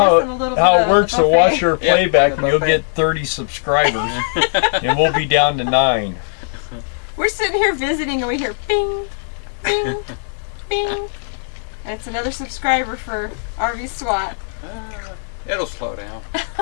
than a little how bit it of works the to buffet. watch your Yeah, playback, the and you'll buffet. get 30 subscribers, and we'll be down to 9. We're sitting here visiting and we hear bing, bing, bing. And it's another subscriber for RV SWAT. It'll slow down.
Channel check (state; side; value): silent; right; digital silence